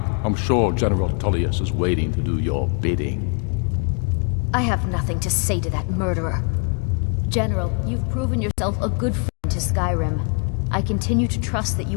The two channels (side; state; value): right; quieter; 39.1 dB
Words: I'm sure General Tullius is waiting to do your bidding. I have nothing to say to that murderer. General, you've proven yourself a good friend to Skyrim. I continue to trust that